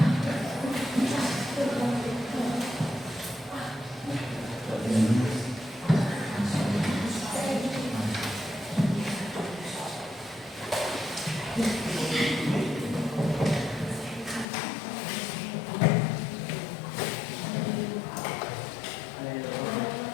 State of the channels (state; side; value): drops out; right; at 14.5 s